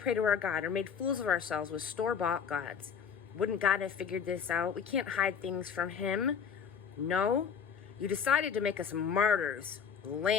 to our God or made fools of ourselves with store-bought gods, wouldn't God have figured this out? We can't hide things from him. No, you decided to make us martyrs,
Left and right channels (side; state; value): right; quieter; 7.0 dB